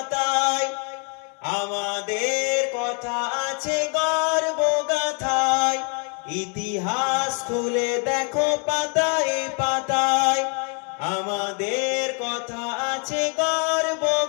আমাদের কথা আছে গর্ব গাথায়। ইতিহাস খুলে দেখো পাতায় পাতায়, আমাদের কথা আছে গর্ব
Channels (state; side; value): quieter; right; 38.2 dB